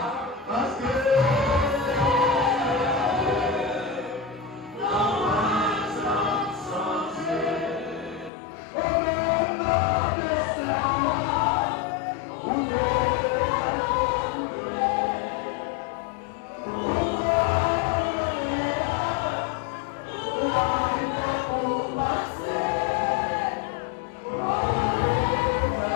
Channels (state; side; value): drops out; right; at 8.3 s